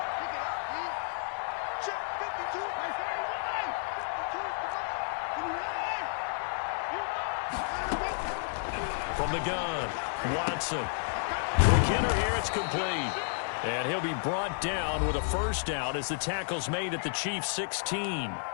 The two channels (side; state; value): right; silent; digital silence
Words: From the gun, Watson. McKinnon here, it's complete. And he'll be brought down with a first down as the tackle's made at the Chiefs' 16.